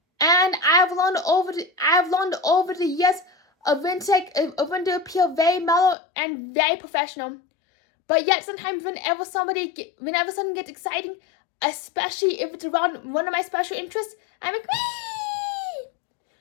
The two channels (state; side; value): drops out; right; at 6.0 s